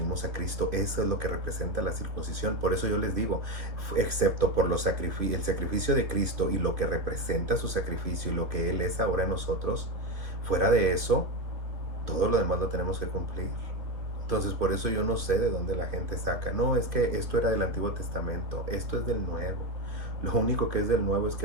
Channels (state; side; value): late; left; 2.7 ms